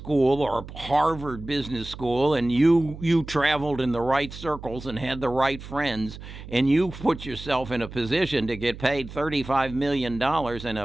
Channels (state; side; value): noise; right; hum, 13 dB below the sound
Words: or Harvard Business School and you traveled in the right circles and had the right friends and you put yourself in a position to get paid $35 million in